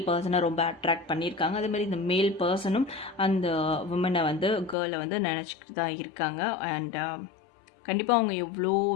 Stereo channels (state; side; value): drops out; right; at 4.8 s